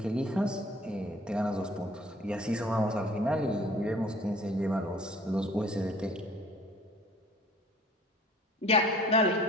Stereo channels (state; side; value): normal; both; correlation 0.51